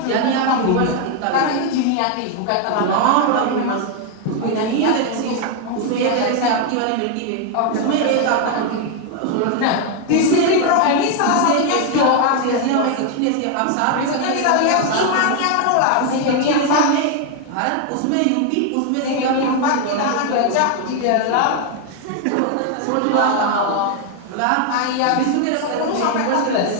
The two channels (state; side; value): different; both; correlation 0.01